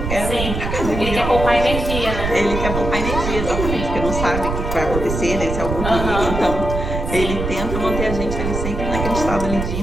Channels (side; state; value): right; noise; rumble, 4 dB below the sound